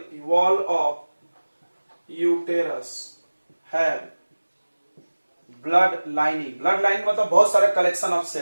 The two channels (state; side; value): inverted; both; correlation -1.00